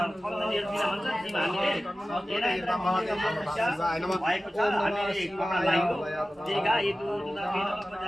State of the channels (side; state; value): both; normal; correlation 0.96